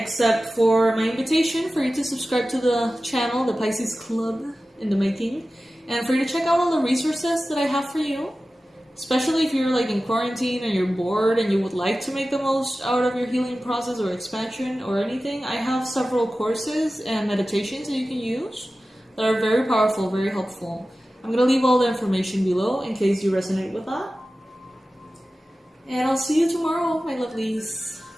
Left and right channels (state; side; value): normal; both; correlation 0.95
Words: for my invitation for you to subscribe to the channel, the Pisces Club in the making, and for you to check out all the resources that I have for you, especially if you're like in quarantine and you're bored and you would like to make the most out of your healing process or expansion or anything. I have several courses and meditations that you can use that are very powerful, very helpful. I'm going to leave all the information below in case you resonate with that. And I'll see you tomorrow, my lovelies.